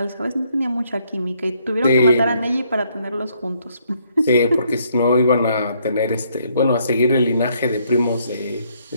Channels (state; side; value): inverted; both; correlation -0.70